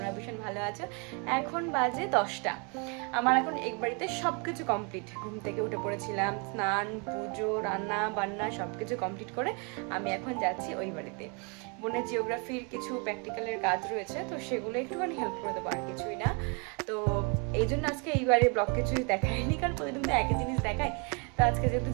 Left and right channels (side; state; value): left; quieter; 34.0 dB